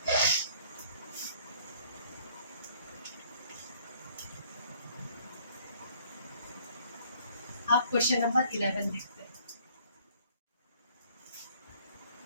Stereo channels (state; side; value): inverted; both; correlation -0.59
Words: आप क्वेश्चन नंबर 11 देखते हैं।